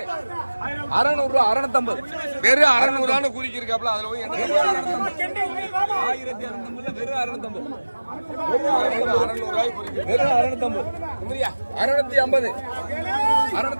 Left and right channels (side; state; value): both; inverted; correlation -1.00